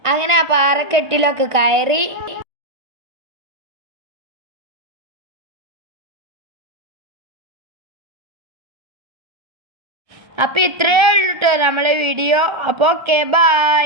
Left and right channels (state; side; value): late; left; 1.3 ms